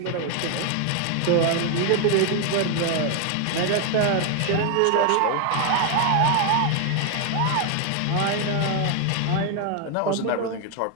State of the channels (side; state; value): both; different; correlation 0.01